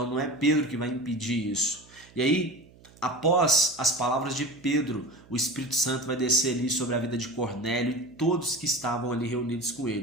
não é Pedro que vai impedir isso. E aí, após as palavras de Pedro, o Espírito Santo vai descer ali sobre a vida de Cornélio e todos que estavam ali reunidos com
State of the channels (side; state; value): right; noise; hum, 25 dB below the sound